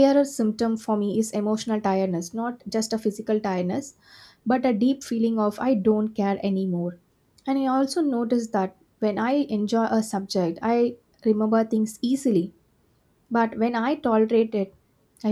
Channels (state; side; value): identical; both; correlation 1.00